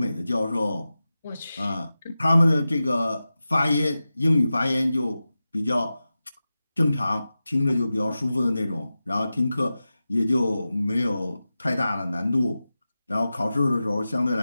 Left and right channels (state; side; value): inverted; both; correlation -0.94